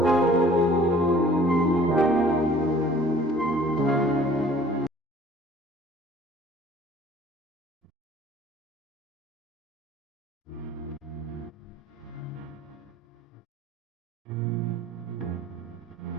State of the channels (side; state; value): both; normal; correlation 0.52